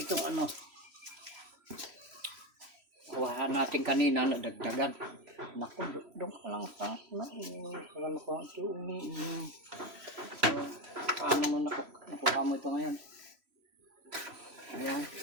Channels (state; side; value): late; left; 3.0 ms